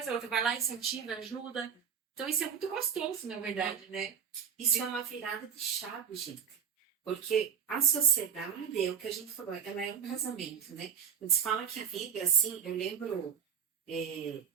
a outra vai lá, incentiva, ajuda. Então isso é muito gostoso, na verdade, né? Isso é uma virada de chave, gente. Porque a sociedade, é o que a gente falou, ela é um casamento, né? Quando se fala que vibra assim, eu lembro,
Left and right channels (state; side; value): quieter; left; 7.7 dB